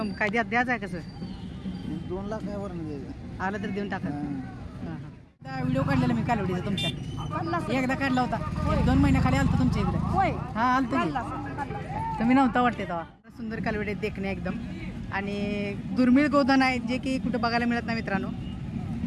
काय द्यायचं आहे कसं? 2 लाख आहे वरून द्यायचं. आलं तर देऊन टाका. व्हिडिओ काढलेला मी कालवडीचा तुमच्या एकदा काढला होता, 2 महिन्याखाली आलतो तुमच्या इकडे. हा आलतो तुम्ही नव्हता वाटते तेव्हा. सुंदर कालवडी देखणे एकदम आणि दुर्मिळ गोधन आहे जे की कुठं बघायला मिळत नाही मित्रांनो.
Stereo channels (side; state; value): both; identical; correlation 1.00